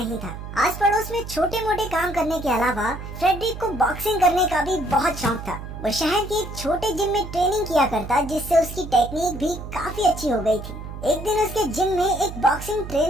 था। आस पड़ोस में छोटे मोटे काम करने के अलावा फ्रेडरिक को बॉक्सिंग करने का भी बहुत शौक था। वो शहर के एक छोटे जिम में ट्रेनिंग किया करता, जिससे उसकी टेक्निक भी काफी अच्छी हो गई थी। एक दिन उसके जिम में एक बॉक्सिंग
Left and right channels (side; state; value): right; noise; hum, 10 dB below the sound